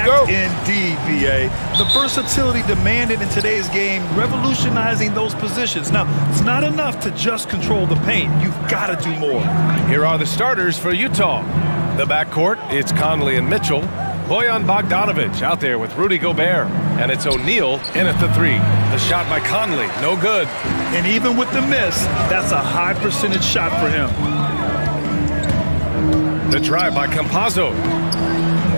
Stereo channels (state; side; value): inverted; both; correlation -1.00